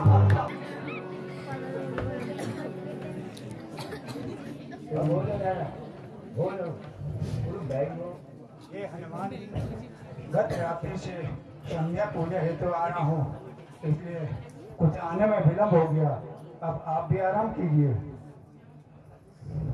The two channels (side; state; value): both; identical; correlation 1.00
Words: ये हनुमान गत रात्रि से संध्या पूजा हेतु आ रहा हूँ, इसलिए कुछ आने में विलम्ब हो गया। अब आप भी आराम कीजिए।